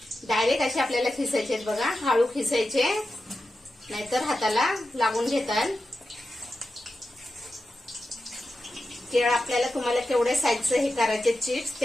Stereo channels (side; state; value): both; normal; correlation 0.91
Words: डायरेक्ट असे आपल्याला खिसायचे बघा. हळू खिसायचे नाहीतर हाताला लागून घेतात. केळ आपल्याला तुम्हाला केवढे साईजचे हे करायचे चिप्स